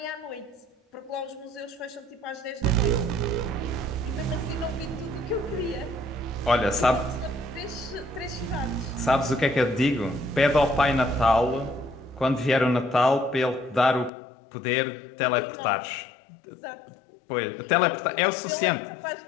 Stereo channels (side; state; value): right; drops out; at 14.1 s